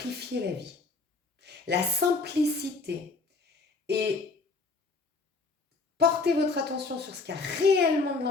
la vie. La simplicité et porter votre attention sur ce qui a réellement de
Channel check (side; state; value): right; quieter; 4.0 dB